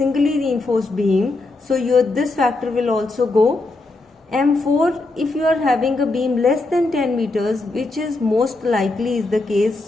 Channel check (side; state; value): right; quieter; 3.1 dB